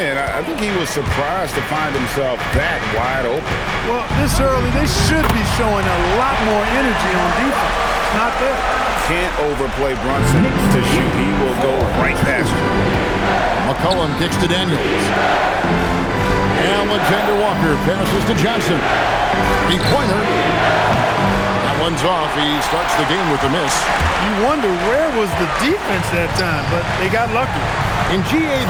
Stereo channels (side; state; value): both; identical; correlation 1.00